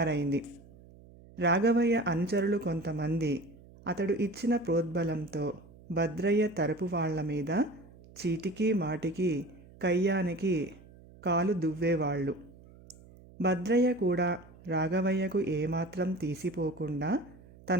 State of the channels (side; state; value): right; noise; hum, 22 dB below the sound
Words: రాఘవయ్య అనుచరులు కొంతమంది అతడు ఇచ్చిన ప్రోద్బలంతో భద్రయ్య తరపు వాళ్ల మీద చీటికి మాటికి కయ్యానికి కాలు దువ్వేవాళ్ళు. భద్రయ్య కూడా రాఘవయ్యకు ఏమాత్రం తీసిపోకుండా